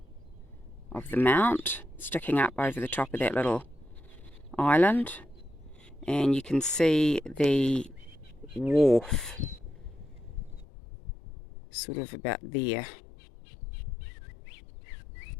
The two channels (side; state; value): right; drops out; at 10.7 s